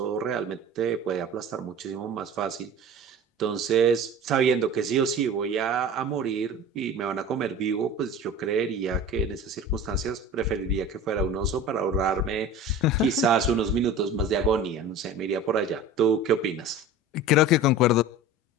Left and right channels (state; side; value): normal; both; correlation 0.37